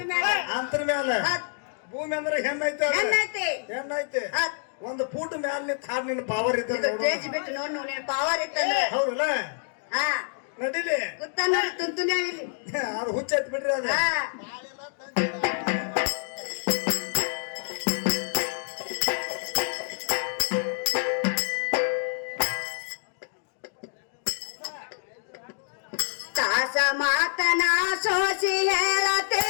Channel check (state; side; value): silent; right; digital silence